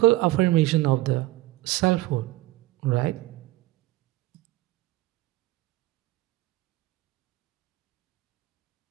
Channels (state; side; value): quieter; left; 18.7 dB